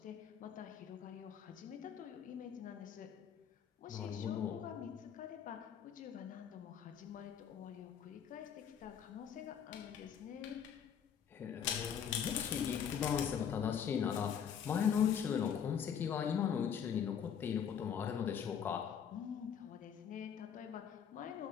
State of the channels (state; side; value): quieter; right; 8.1 dB